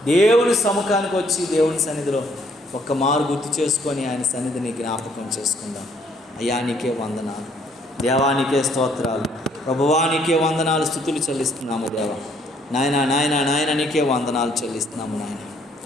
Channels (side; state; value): both; normal; correlation 0.65